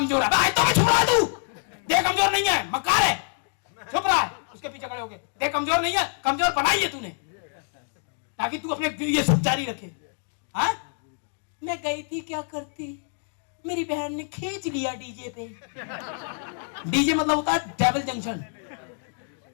है। आयतों में छुप रहा है तू, देह कमजोर नहीं है, मक्कार है, छुप रहा है, उसके पीछे खड़े होके। देह कमजोर नहीं है, कमजोर बनाई है तूने, ताकि तू अपने ये सब जारी रखे। हाँ मैं गई थी, क्या करती, मेरी बहन ने खींच लिया डीजे पे। डीजे मतलब होता है डेविल जंक्शन,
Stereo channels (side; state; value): right; silent; 61 dB below the other